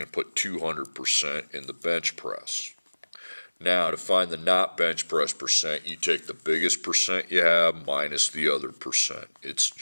to put 200% in the bench press. Now, to find the not bench press percent, you take the biggest percent you have minus the other percent. It's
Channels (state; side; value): inverted; both; correlation -1.00